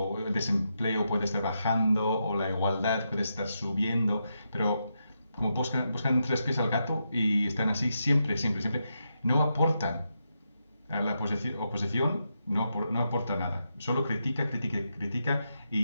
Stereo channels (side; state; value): both; inverted; correlation -0.84